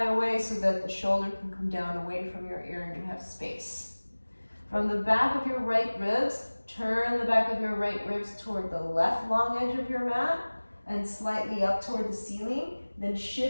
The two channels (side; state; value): both; inverted; correlation -1.00